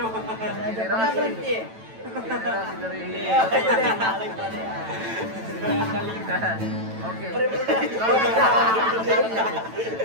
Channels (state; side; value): late; left; 9.0 ms